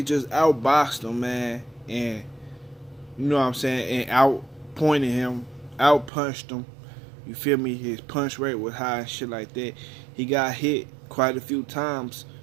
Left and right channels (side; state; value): left; drops out; at 6.1 s